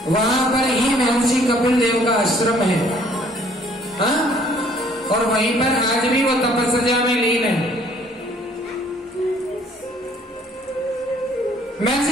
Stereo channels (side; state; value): both; normal; correlation 0.60